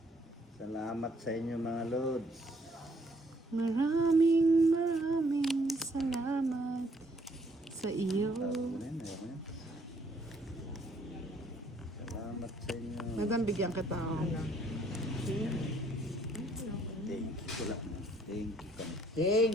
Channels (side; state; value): both; normal; correlation 0.65